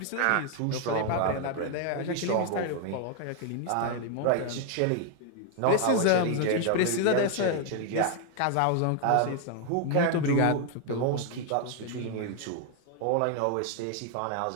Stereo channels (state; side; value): different; both; correlation 0.01